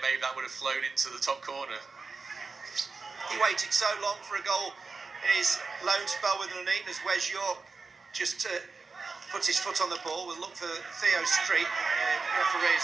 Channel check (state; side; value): quieter; left; 4.3 dB